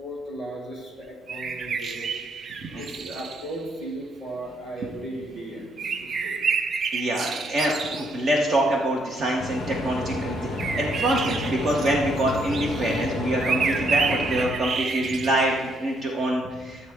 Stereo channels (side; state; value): both; normal; correlation 0.72